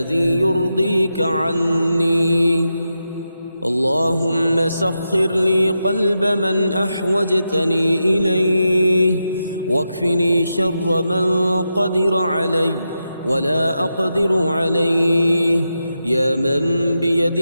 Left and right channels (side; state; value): both; inverted; correlation -0.88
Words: يرضيك عني. اللهم سخر لي قلب من أحوجتني إليه واكفني شر من قدر علي ولا أقدر عليه. يا من